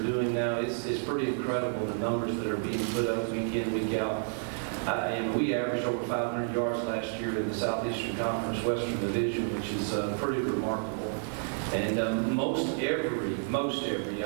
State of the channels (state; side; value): silent; left; digital silence